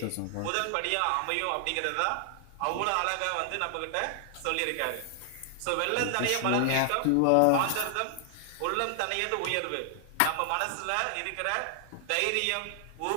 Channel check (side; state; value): both; different; correlation 0.00